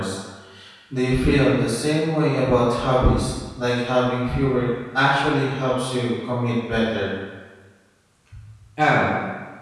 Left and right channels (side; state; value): both; identical; correlation 1.00